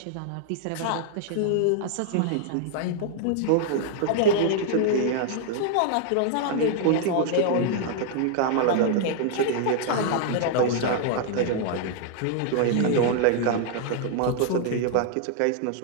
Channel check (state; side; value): different; both; correlation -0.01